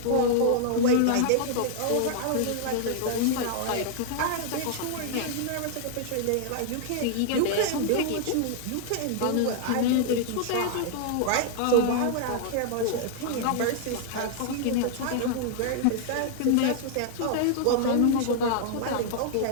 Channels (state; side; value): different; both; correlation -0.01